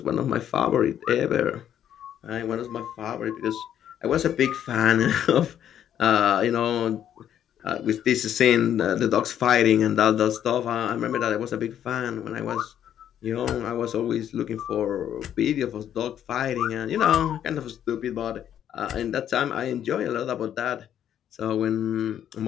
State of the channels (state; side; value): quieter; right; 10.1 dB